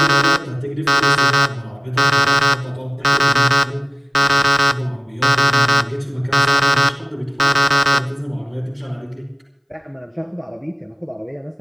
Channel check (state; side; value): identical; both; correlation 1.00